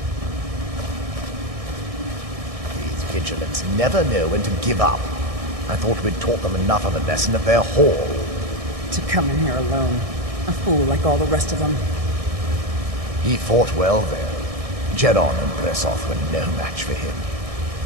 These vigilants never know when to give up. I thought we'd taught them enough of a lesson at their hall. To come in here alone. A fool like all the rest of them. He fought well there. Jedon and Bressoth were no match for him.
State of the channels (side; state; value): left; late; 1.6 ms